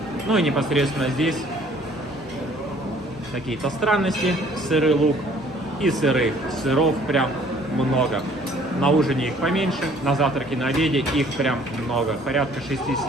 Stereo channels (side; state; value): both; normal; correlation 0.57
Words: Ну и непосредственно здесь какие-то странности. Сырый лук и сыры. Сыров прям много. На ужине их поменьше, на завтраке, на обеде их прям много. Порядка